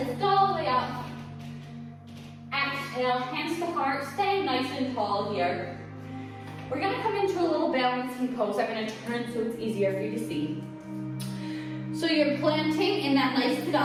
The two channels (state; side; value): identical; both; correlation 1.00